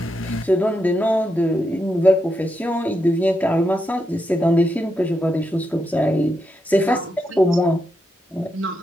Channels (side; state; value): both; normal; correlation 0.84